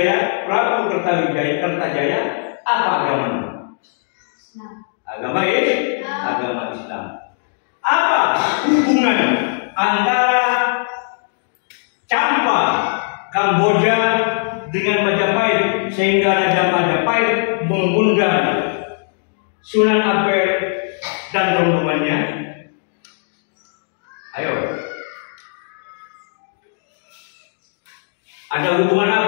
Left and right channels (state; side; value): silent; right; digital silence